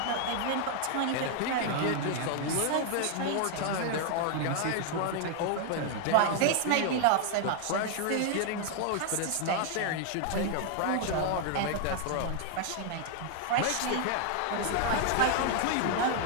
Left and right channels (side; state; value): both; different; correlation 0.00